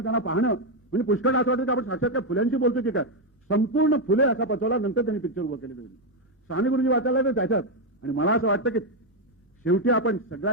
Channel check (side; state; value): both; normal; correlation 0.04